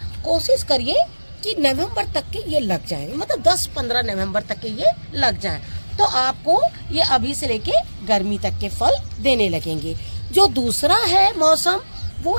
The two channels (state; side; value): inverted; both; correlation -1.00